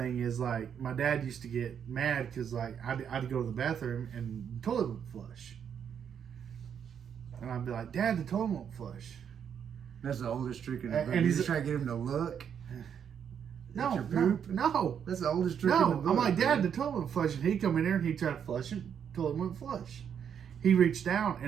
is, like, my dad used to get mad because, like, I'd go to the bathroom and the toilet would flush. And I'd be like, Dad, the toilet won't flush. That's the oldest trick in the book. And You just try to get him to look. No. That's the oldest trick in the book. I'm like, Dad, the toilet won't flush. And he'd come in there and he'd try to flush it. The toilet wouldn't flush. He reached down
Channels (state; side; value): quieter; left; 8.1 dB